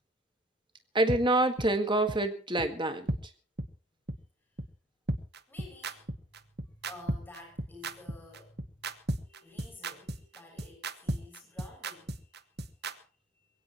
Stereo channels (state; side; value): normal; both; correlation 0.55